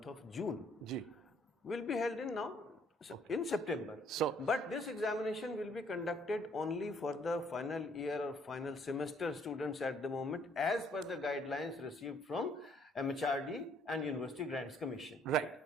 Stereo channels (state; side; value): normal; both; correlation 0.64